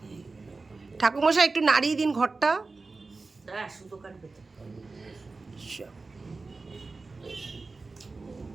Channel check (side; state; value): left; quieter; 3.8 dB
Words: ঠাকুরমশাই একটু নাড়িয়ে দিন ঘরটা। সুতো কাটবে তো।